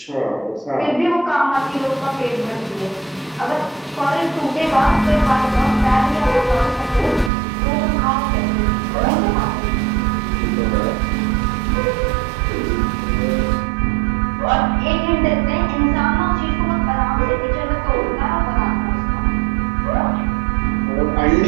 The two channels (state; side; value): drops out; left; at 7.3 s